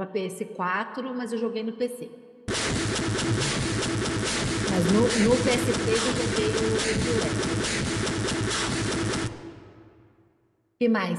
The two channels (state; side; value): identical; both; correlation 1.00